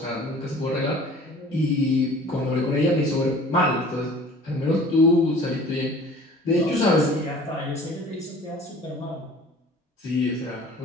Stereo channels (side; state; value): both; normal; correlation 0.46